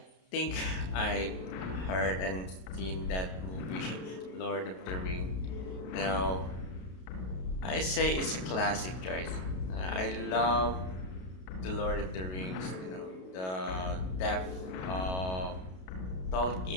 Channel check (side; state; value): right; late; 32 ms